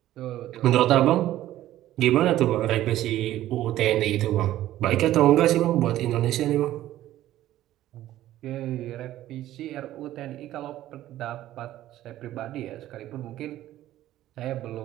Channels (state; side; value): quieter; left; 13.9 dB